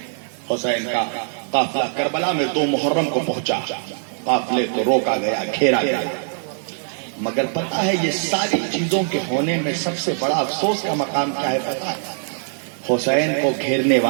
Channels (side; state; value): left; silent; digital silence